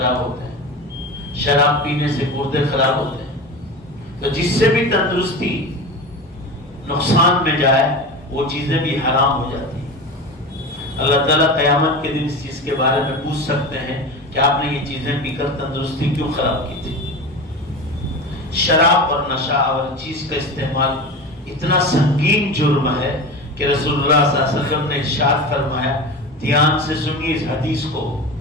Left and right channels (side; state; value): both; normal; correlation 0.28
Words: ہوتے ہیں، شراب پینے سے گردے خراب ہوتے ہیں، تو جس سے بھی تندرستی نقصان میں جائے وہ چیزیں بھی حرام ہو جاتی ہیں۔ اللہ تعالیٰ قیامت کے دن اس چیز کے بارے میں پوچھ سکتے ہیں کہ آپ نے یہ چیزیں پی کر تندرستی کیوں خراب کی تھی۔ شراب اور نشہ اور چیز کا استعمال اتنا سنگین جرم ہے کہ رسول اللہ صلی اللہ علیہ وسلم نے ارشاد فرمایا، دھیان سے سنیے اس حدیث کو